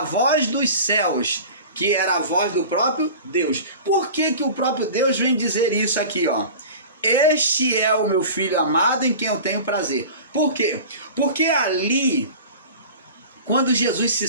voz dos céus, que era a voz do próprio Deus. Por que que o próprio Deus vem dizer isso aqui, ó? Este é o meu filho amado em quem eu tenho prazer. Por quê? Porque ali, quando Jesus se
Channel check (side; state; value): both; inverted; correlation -0.37